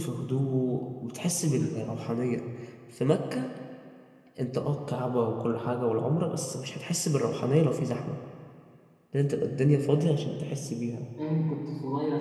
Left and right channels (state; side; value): identical; both; correlation 1.00